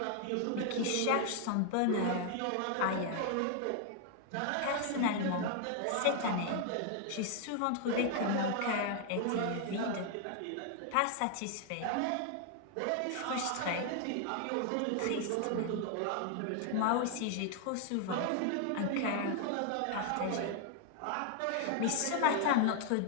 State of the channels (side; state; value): both; different; correlation 0.00